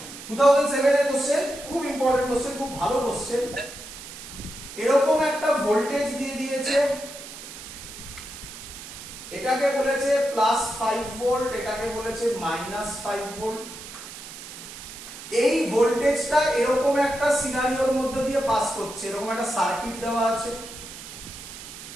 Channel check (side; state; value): right; noise; hiss, 13 dB below the sound